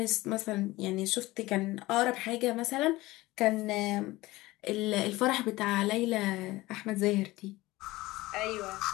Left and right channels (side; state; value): right; quieter; 19.2 dB